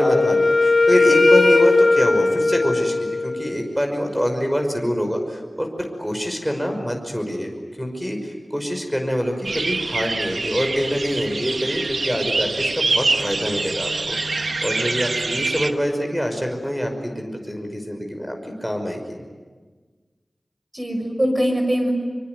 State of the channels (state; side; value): normal; both; correlation 0.96